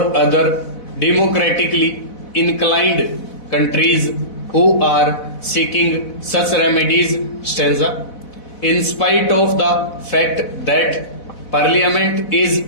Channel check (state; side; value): late; right; 4.0 ms